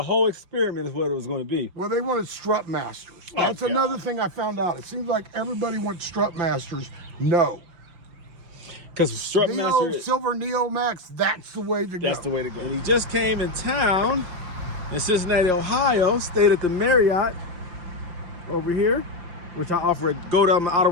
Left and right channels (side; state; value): left; late; 5.8 ms